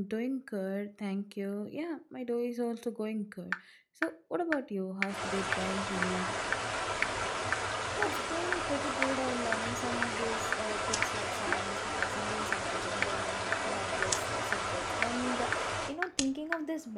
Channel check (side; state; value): both; identical; correlation 1.00